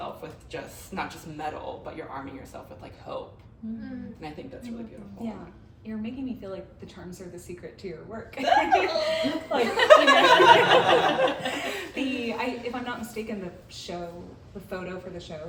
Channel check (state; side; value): identical; both; correlation 1.00